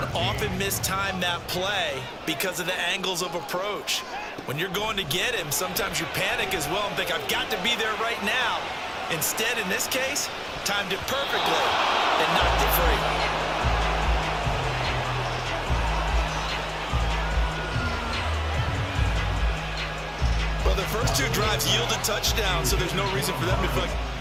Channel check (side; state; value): both; identical; correlation 1.00